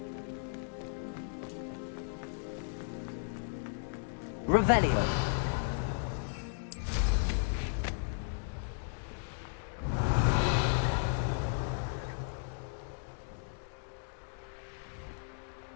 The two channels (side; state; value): right; silent; digital silence